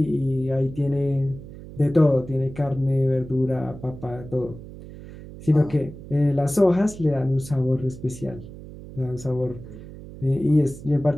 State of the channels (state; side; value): noise; right; hum, 15 dB below the sound